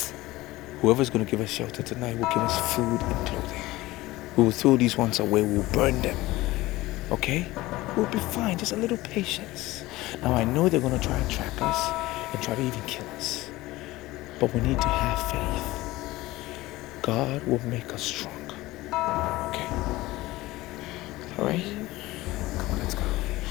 Whoever's going to give us shelter tonight will give us food and clothing. We will throw these ones away. We'll burn them. Okay? We'll be fine. Just a little patience. Now, I know they're going to try and track us and try to even kill us. But we need to have faith. God will make us strong. Okay? Alright? Come on, let's go.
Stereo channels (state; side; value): quieter; right; 18.6 dB